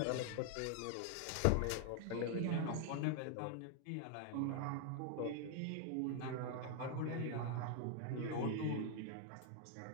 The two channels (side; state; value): both; different; correlation 0.00